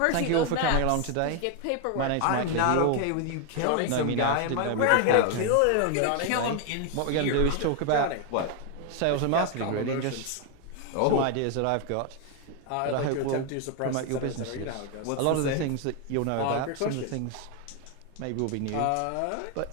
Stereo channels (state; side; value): different; both; correlation 0.01